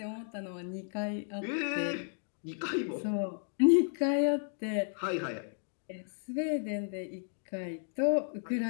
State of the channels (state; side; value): silent; right; digital silence